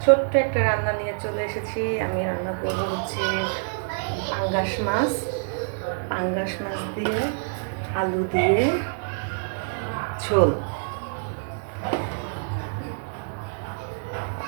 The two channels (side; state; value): left; silent; digital silence